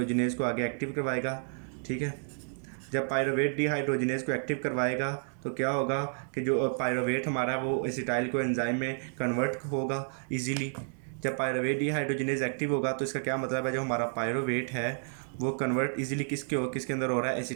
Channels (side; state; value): left; silent; 57 dB below the other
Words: को आगे एक्टिव करवाएगा, ठीक है। जब पायरोवेट डिहाइड्रोजनेज को एक्टिव करवाएगा तो क्या होगा कि जो पायरोवेट हमारा वो एसिटाइल को एंजाइम में कन्वर्ट होगा इजीली। जब पायरोवेट डिहाइड्रोजनेज एक्टिव होगा तो इसका क्या मतलब है, जो हमारा पायरोवेट है वो कन्वर्ट इजीली किसके अंदर हो रहा है,